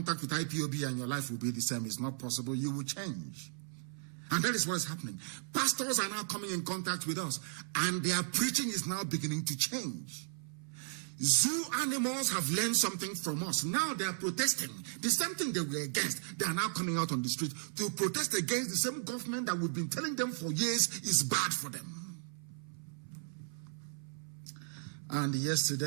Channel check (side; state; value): left; silent; 54 dB below the other